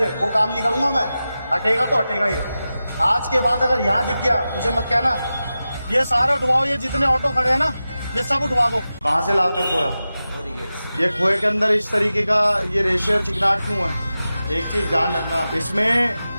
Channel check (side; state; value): both; inverted; correlation -0.93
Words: वो काम नहीं करूंगा मैं। हटेगा तो हटेगा ये। आज के बाद अगर यहाँ दिख गया मुझे मत कहना। ये सारा उठवाओ, ये जितने ऑटो खड़े हैं ना ये सब उठवा दो। कहाँ से लाते हो खोया? ये खोए के अंदर इस तरीके का ये रेशर चिकनाट क्यों है? एक चीज ध्यान रखना,